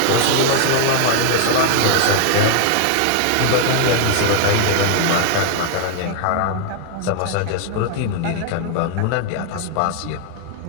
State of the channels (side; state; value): both; different; correlation 0.00